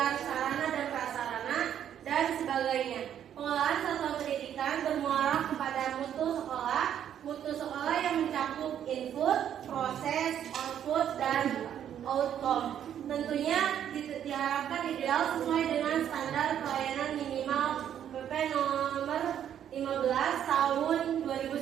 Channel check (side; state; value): left; quieter; 9.8 dB